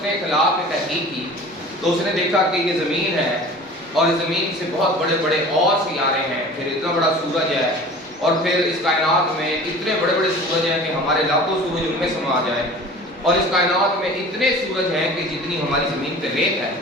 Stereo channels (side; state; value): both; normal; correlation 0.41